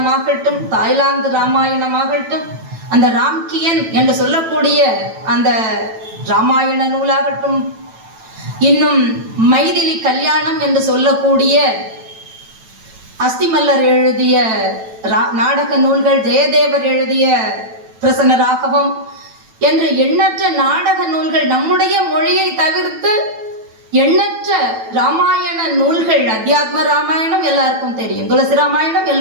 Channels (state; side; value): late; left; 9.1 ms